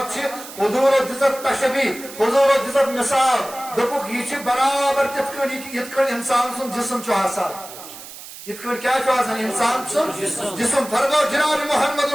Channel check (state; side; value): noise; right; hiss, 14 dB below the sound